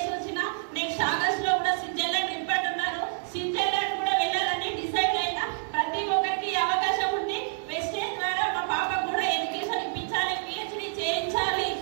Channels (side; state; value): left; silent; 59 dB below the other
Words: వచ్చిన. నెక్స్ట్ ఆగస్ట్ లో కూడా స్విట్జర్లాండ్ ట్రిప్ అంటున్నారు. స్విట్జర్లాండ్ కూడా వెళ్ళాలని డిసైడ్ అయినా. ప్రతి ఒక్కరికి అవకాశం ఉంది. వెస్టేజ్ ద్వారా మా పాపకు కూడా ఎడ్యుకేషన్ ఇప్పించాలి, పిహెచ్డి చేయించాలి.